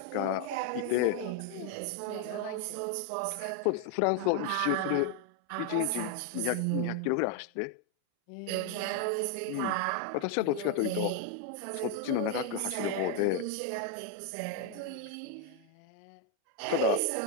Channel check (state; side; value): different; both; correlation 0.01